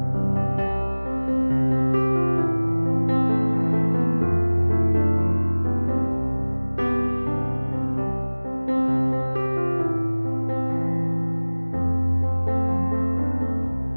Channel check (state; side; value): inverted; both; correlation -1.00